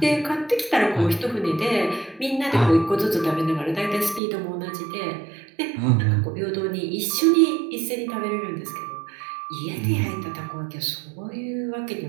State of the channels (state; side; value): drops out; left; at 4.2 s